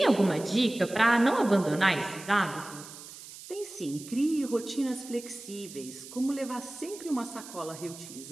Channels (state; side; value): noise; right; hiss, 15 dB below the sound